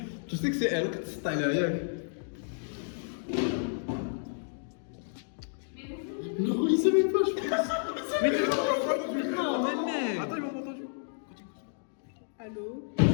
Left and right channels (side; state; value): right; silent; digital silence